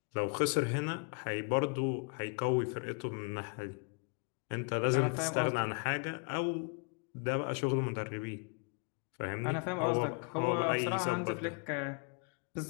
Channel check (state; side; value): quieter; right; 36.1 dB